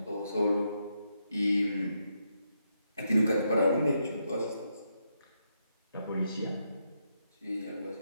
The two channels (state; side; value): inverted; both; correlation -0.81